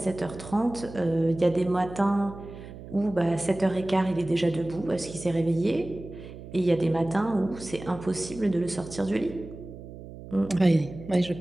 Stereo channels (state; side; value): noise; right; hum, 14 dB below the sound